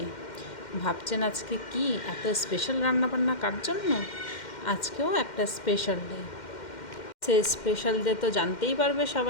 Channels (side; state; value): right; late; 2.1 ms